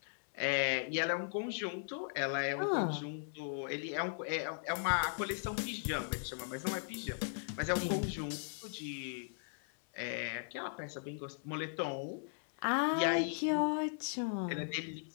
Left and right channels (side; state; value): right; silent; 53 dB below the other